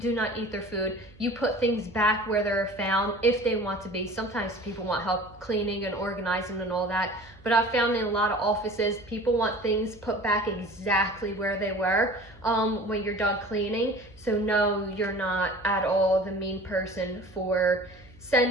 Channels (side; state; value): right; noise; hum, 24 dB below the sound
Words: not eat their food. You put things back where they're found if they want to be. Sometimes people want help cleaning and organizing and all that. But I've found in a lot of offices, people want things put back exactly where they were when you're done cleaning. So no, you're not at all the mean person for